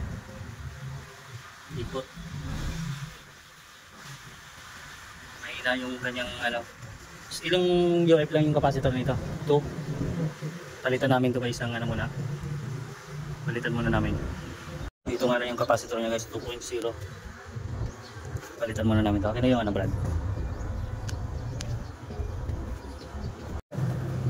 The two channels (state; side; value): identical; both; correlation 1.00